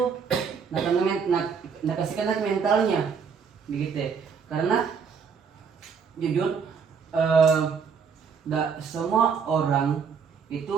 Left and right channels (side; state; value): left; quieter; 6.2 dB